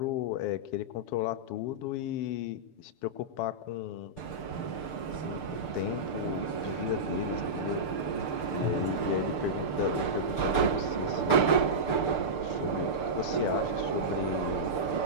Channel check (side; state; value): right; late; 6.7 ms